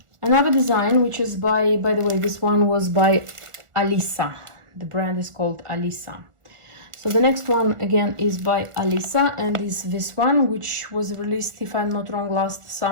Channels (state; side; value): late; left; 1.4 ms